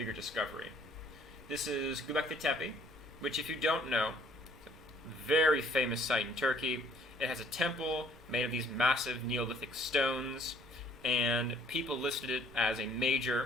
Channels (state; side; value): normal; both; correlation 0.60